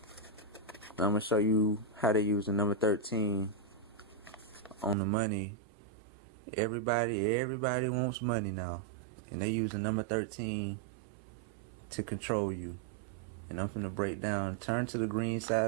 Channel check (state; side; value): drops out; left; at 5.0 s